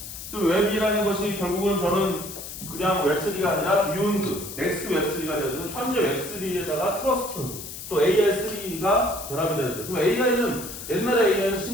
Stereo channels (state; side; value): noise; left; hiss, 10 dB below the sound